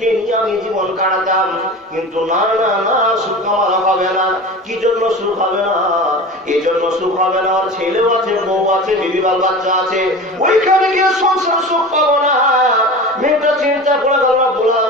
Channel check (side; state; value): both; normal; correlation 0.33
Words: নিয়ে আমি জীবন কাটাতাম। কিন্তু না না না, সুখ আমার হবে না। কি জন্য সুখ হবে না? এই জন্য সুখ হবে না, ওর ছেলেও আছে, বউ আছে, বিবি বাল বাচ্চা আছে, ওইখানে গিয়ে সংসার সুখ পাবো না। মেয়েটা চিন্তা করে গেল,